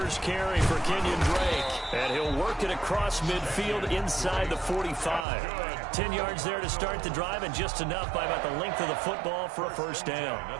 carry for Kenyon Drake. And he'll work it across midfield inside the 45. 10 yards there to start the drive, and just enough by about the length of the football for a first down.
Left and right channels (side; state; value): left; drops out; at 5.2 s